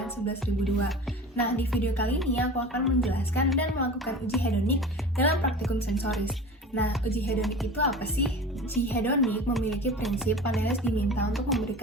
Nah, di video kali ini aku akan menjelaskan dan melakukan uji hedonik dalam praktikum sensoris. Nah, uji hedonik itu apa sih? Uji hedonik memiliki prinsip panelis diminta untuk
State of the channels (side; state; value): both; normal; correlation 0.36